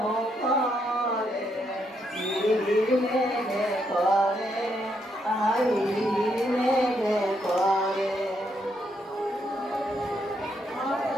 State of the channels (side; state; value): both; normal; correlation 0.77